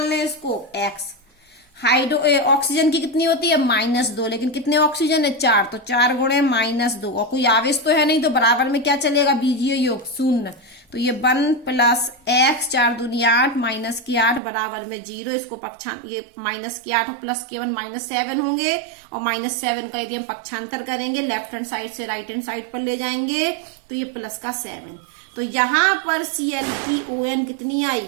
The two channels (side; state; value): left; drops out; at 14.4 s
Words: लें इसको, x। ऑक्सीजन की कितनी होती है, -2, लेकिन कितने ऑक्सीजन है, 4, तो 4 × -2, और कोई आवेश तो है नहीं, तो बराबर में क्या चलेगा, बीजीय योग 0। तो ये 1 + x, 4 दूनी 8, -8 बराबर में 0। इसको ये -8 और +1 -7 होंगे, और -7 का यदि हम पक्षांतर करेंगे लेफ्ट हैंड साइड से राइट हैंड साइड पर ले जाएंगे तो ये +7। तो यहाँ पर Cl की ON कितनी